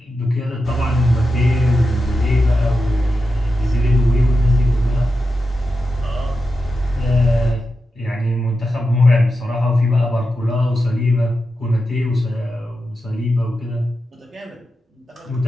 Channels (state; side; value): normal; both; correlation 0.90